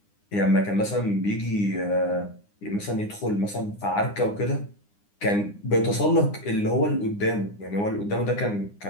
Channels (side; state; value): right; late; 9.8 ms